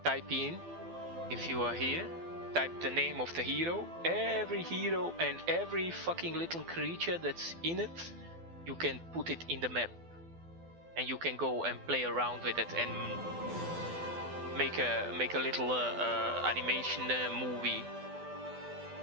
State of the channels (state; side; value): late; left; 12 ms